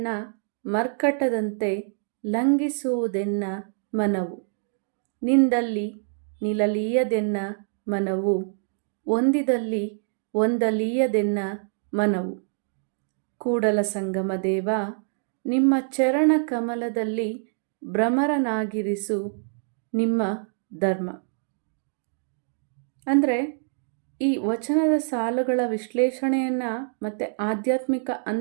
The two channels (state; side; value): silent; left; digital silence